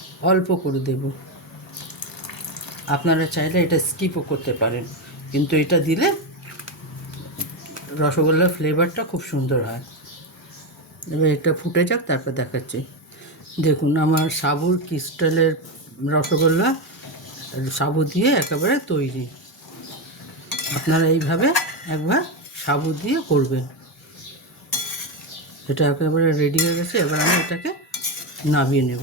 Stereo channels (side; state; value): both; normal; correlation 0.11